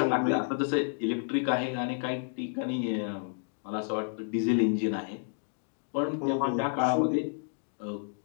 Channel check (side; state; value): right; silent; digital silence